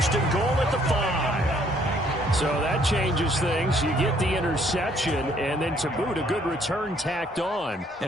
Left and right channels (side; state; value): both; normal; correlation 0.64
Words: and goal at the 5. So that changes things. You get the interception, and then to boot, a good return tacked on.